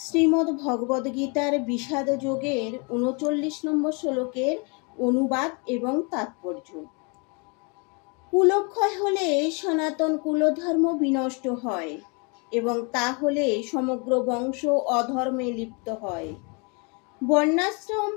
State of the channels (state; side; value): quieter; right; 33.0 dB